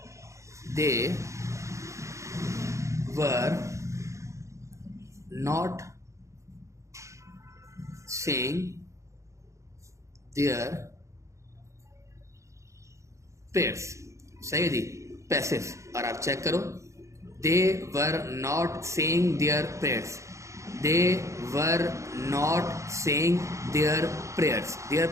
they were not saying their prayers. सही है जी, पैसिव। और आप चेक करो, they were not saying their prayers, they were not saying their prayers. Their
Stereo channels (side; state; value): left; late; 0.15 ms